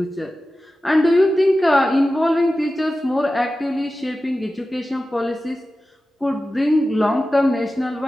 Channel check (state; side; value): normal; both; correlation 0.94